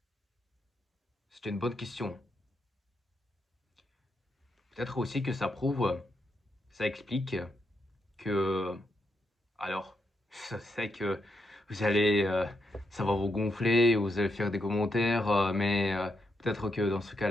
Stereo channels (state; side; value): normal; both; correlation 0.81